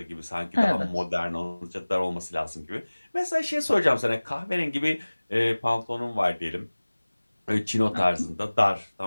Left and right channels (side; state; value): both; inverted; correlation -1.00